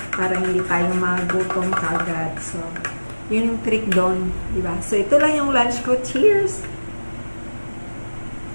para hindi tayo magutom kagad. So, yun yung trick doon, diba? So, ito lang yung lunch ko. Cheers!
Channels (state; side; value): inverted; both; correlation -1.00